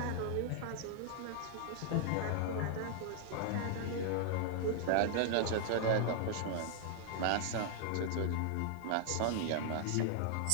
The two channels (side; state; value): both; different; correlation -0.01